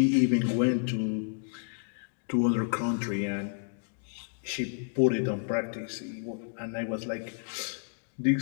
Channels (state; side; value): silent; right; digital silence